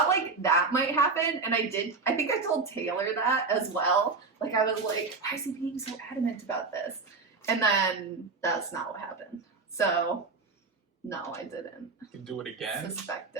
like, that might happen, and I think I told Taylor that as well. Like, I was like, why is he being so adamant about this? And then that's not what happened. So, no, I didn't. You can do it again? Suspect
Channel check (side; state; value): left; quieter; 4.2 dB